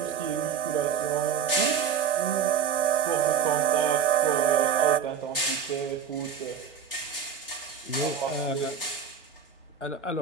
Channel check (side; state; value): left; quieter; 7.3 dB